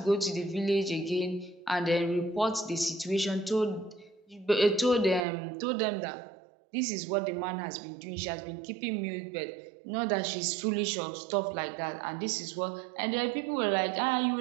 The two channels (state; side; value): drops out; left; at 5.2 s